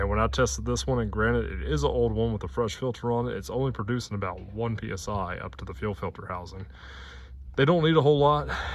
when I tested this one, and granted it is an old one with a fresh filter on it, it's only producing about 1 psi up to the fuel filter housing. They don't need a whole lot.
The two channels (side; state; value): both; identical; correlation 1.00